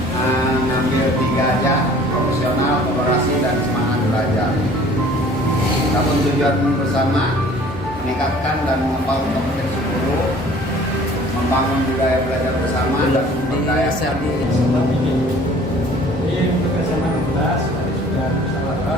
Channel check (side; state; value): both; normal; correlation 0.51